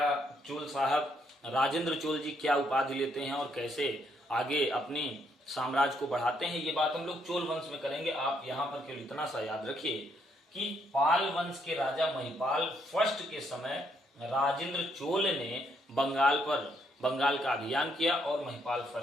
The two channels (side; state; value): both; normal; correlation 0.73